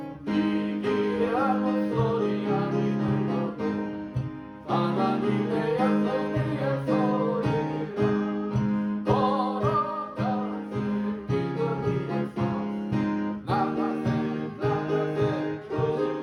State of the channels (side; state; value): both; identical; correlation 1.00